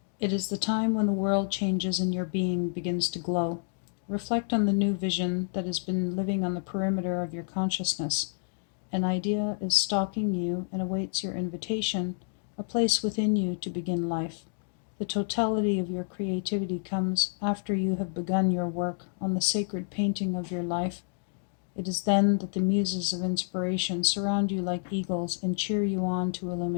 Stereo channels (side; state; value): right; silent; 59 dB below the other